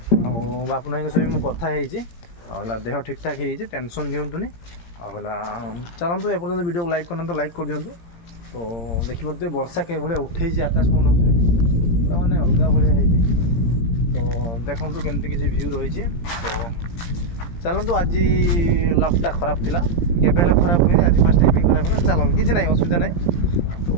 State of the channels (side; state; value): right; late; 17 ms